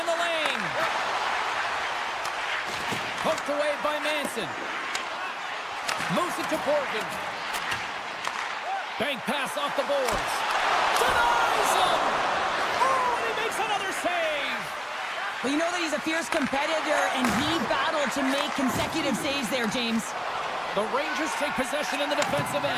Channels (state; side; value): identical; both; correlation 1.00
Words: the lane. Poked away by Manson. Moves it to Borgen. Bank pass off the boards. Denies him! Oh, and he makes another save! Well, you know that he's a fierce competitor, and he battled to make consecutive saves there, James. The Rangers take possession in the defensive